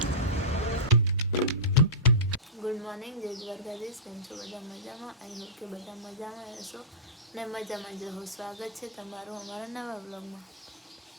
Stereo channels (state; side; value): normal; both; correlation -0.16